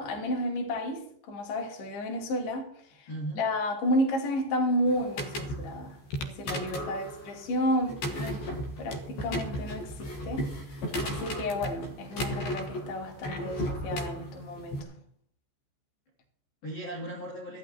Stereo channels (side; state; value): right; late; 14 ms